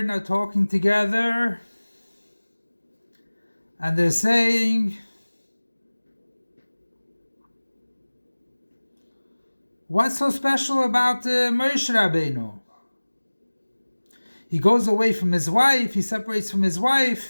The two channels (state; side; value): inverted; both; correlation -1.00